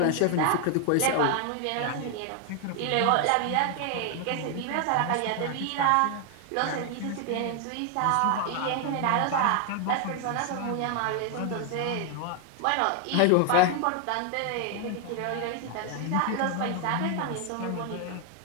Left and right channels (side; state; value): both; different; correlation 0.00